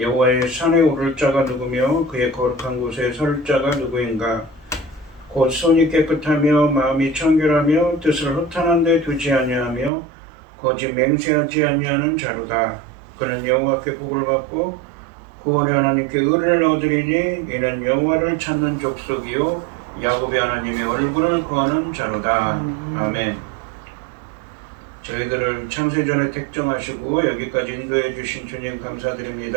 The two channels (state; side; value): drops out; left; at 9.9 s